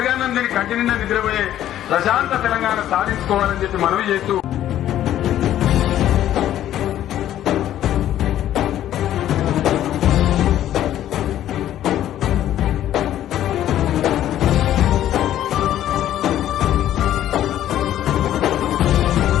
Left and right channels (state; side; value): quieter; right; 12.1 dB